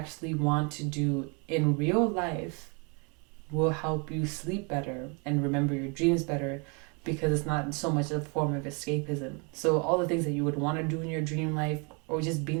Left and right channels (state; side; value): quieter; left; 33.8 dB